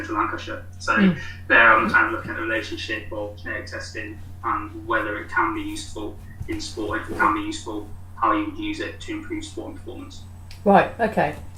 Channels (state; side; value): identical; both; correlation 1.00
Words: Lancashire. So there I'm kind of looking at the relationship of genetic testing and whether it can be useful in sport. If it can be useful, how you would use it to improve sport and performance. Right, okay.